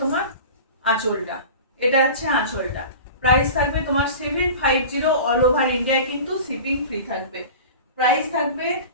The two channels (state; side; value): inverted; both; correlation -0.35